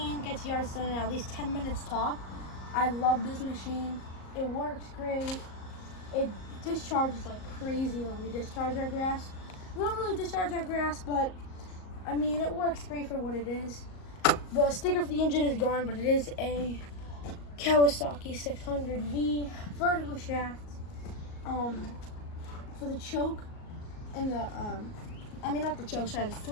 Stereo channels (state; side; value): late; right; 38 ms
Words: gets yards done in at least 10 minutes top. I love this machine. It works great. It discharges like crazy when we discharge our grass. We don't really discharge our grass, but I mean, it works great for what it is. The sticker for the engine is gone, but it is a Kawasaki 600V vertical shaft. For the choke and the, not the choke, sorry, the